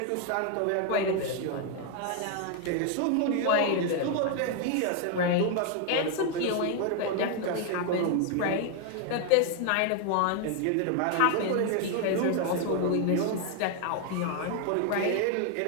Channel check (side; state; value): both; different; correlation 0.00